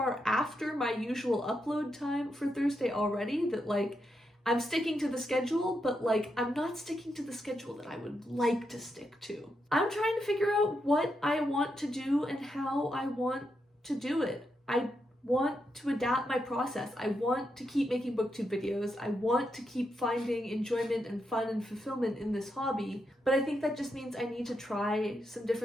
after my usual upload time for Thursday already that like I'm sticking to the schedule, but like I'm not sticking to the schedule that I would like to stick to. I'm trying to figure out what I want to do and how I want to do it. I want to adapt my process. I want to keep making booktube videos. I want to keep finding enjoyment and fun and fulfillment in this hobby, but I think that just means I need to try some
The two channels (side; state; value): both; normal; correlation 0.83